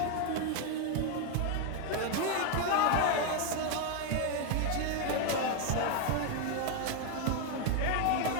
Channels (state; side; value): different; both; correlation 0.01